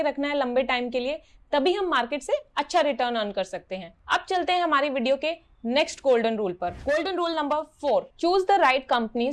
रखना है लंबे टाइम के लिए, तभी हम मार्केट से अच्छा रिटर्न अर्न कर सकते हैं। अब चलते हैं हमारी वीडियो के नेक्स्ट गोल्डन रूल पर। Golden rule number 4, choose the right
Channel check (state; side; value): identical; both; correlation 1.00